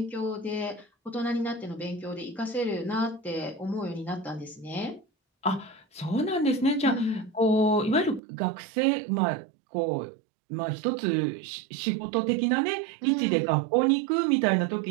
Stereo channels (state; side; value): drops out; left; at 8.2 s